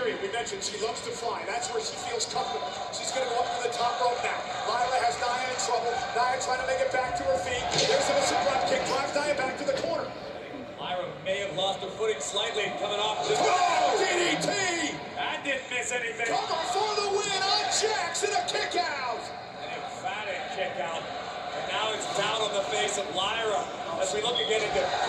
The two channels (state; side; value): identical; both; correlation 1.00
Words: we mentioned she loves to fly. That's where she feels comfortable. She's going to go up to the top rope now. Lyra has Nia in trouble. Nia trying to make it back to her feet. There's a missile drop kick. Drives Nia back to the corner. Lyra may have lost her footing slightly coming off this. Oh, DDT! That didn't miss anything. Cover for the win on Jax and a kick out. An emphatic kick out. And now it's down on the face of Lyra as we look again into